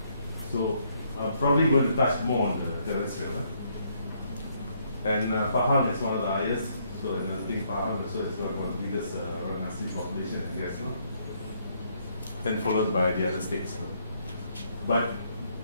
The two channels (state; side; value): inverted; both; correlation -0.71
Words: So I'm probably going to touch more on the terrestrial. And Pahang is one of the highest, so I think Pahang also is one of the biggest orang asli population, I guess. Then followed by the other states. But